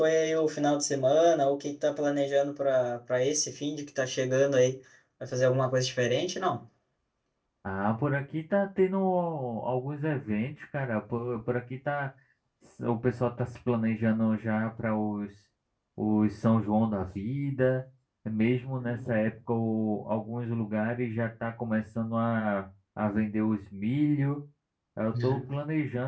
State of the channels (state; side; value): identical; both; correlation 1.00